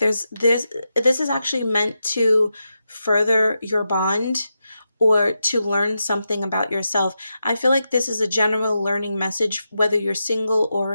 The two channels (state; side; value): inverted; both; correlation -0.88